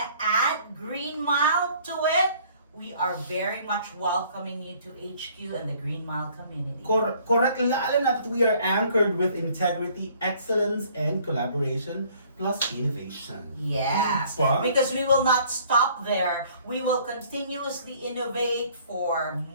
to add GreenMile to it, we are very much welcoming you to HQ and the GreenMile community. Correct. Lalo na that we are anchored with integrity, excellence, and collaboration, plus innovation. Yes, Diba? because we will not stop there. We will continuously innovate for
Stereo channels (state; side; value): inverted; both; correlation -0.57